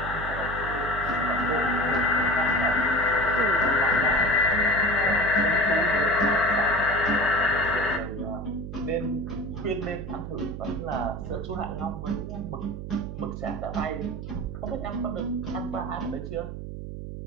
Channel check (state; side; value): noise; right; hum, 8 dB below the sound